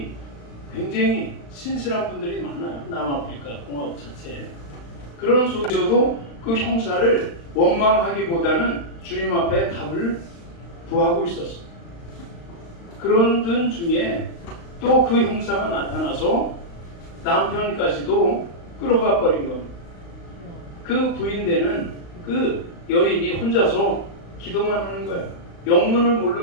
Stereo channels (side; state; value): right; late; 35 ms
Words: 굉장히 신실한 분들이 많아요. 남아프리카 공화국 자체에. 그런 속에서도 그 형사를 원망하기보다는 주님 앞에 답을 구하고 있었어요. 그런 분 중에 또 그 형사가 나타나서 남편까지도 끌어가 버린 겁니다. 그 부인되는 그 여인이 혼자서 기도만 하는 거예요. 영문을